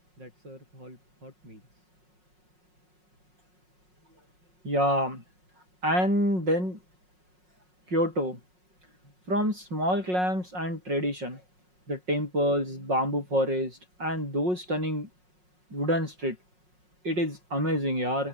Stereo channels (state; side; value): late; left; 5.5 ms